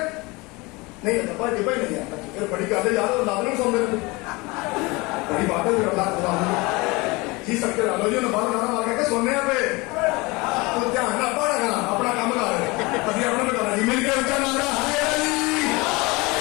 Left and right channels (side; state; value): right; quieter; 24.5 dB